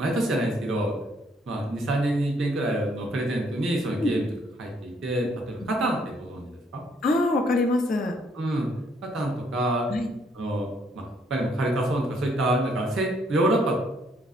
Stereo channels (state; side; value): normal; both; correlation 0.68